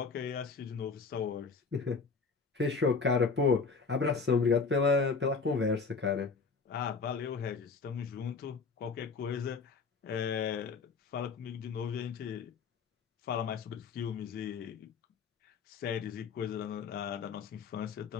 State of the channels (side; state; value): right; quieter; 4.9 dB